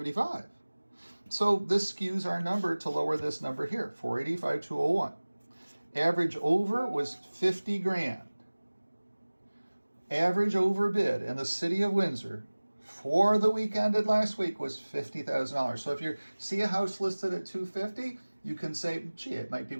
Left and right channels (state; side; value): inverted; both; correlation -1.00